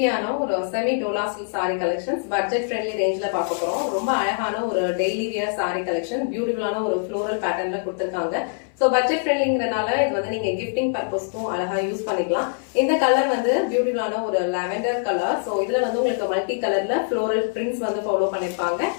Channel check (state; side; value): silent; right; 59 dB below the other